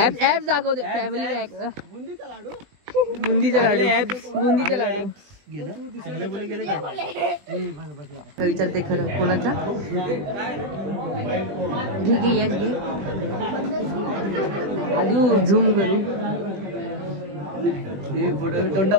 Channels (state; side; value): late; left; 20 ms